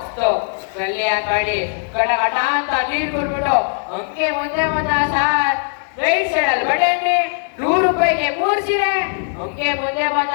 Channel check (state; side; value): silent; right; 67 dB below the other